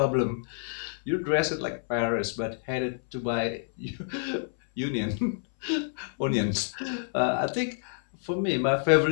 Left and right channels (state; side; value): silent; right; 59 dB below the other